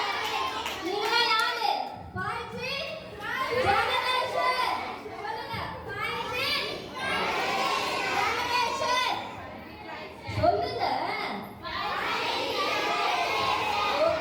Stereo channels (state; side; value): identical; both; correlation 1.00